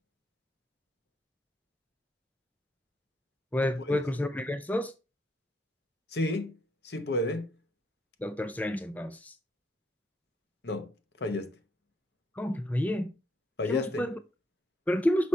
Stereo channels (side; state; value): both; normal; correlation 0.75